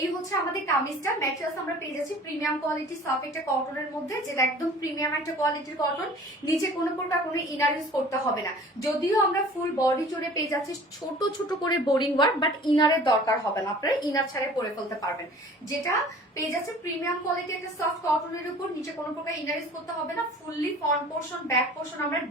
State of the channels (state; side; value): normal; both; correlation 0.46